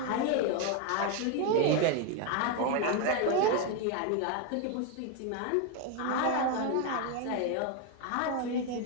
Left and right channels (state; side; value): different; both; correlation 0.02